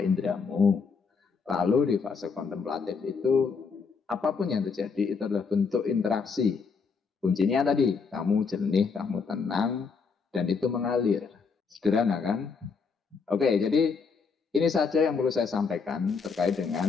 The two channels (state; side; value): quieter; right; 5.3 dB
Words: indramu. Lalu di fase kontemplatif itu, apapun yang terjadi itu adalah bentuk interaksi. Kuncinya tadi, kamu jernih, kamu tenang, dan itu mengalir. Sederhana kan? Oke, jadi ini saja yang perlu saya sampaikan terkait dengan